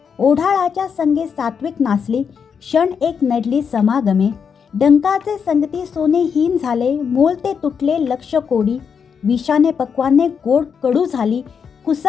ओढाळाच्या संगे सात्विक नाचली, क्षण एक नडली समागमे. डंकाचे संगती सोने हीन झाले, मोल ते तुटले लक्ष कोडी. विषाने पक्वाने गोड कडू झाली,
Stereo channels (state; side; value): quieter; right; 6.6 dB